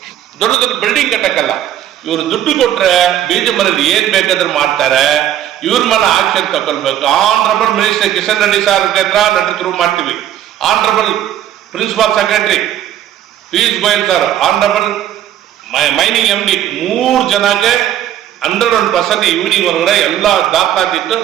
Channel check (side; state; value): left; quieter; 11.4 dB